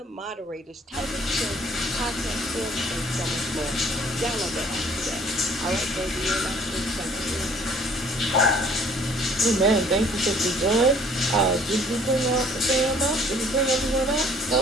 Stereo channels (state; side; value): normal; both; correlation 0.57